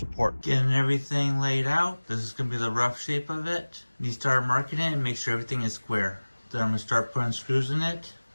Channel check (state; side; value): inverted; both; correlation -1.00